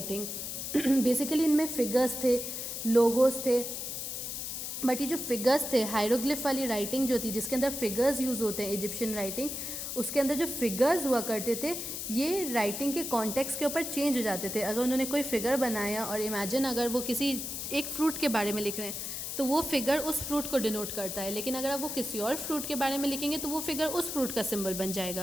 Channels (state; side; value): noise; left; hiss, 5 dB below the sound